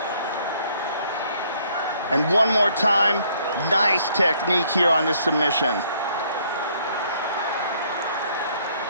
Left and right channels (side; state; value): both; inverted; correlation -0.64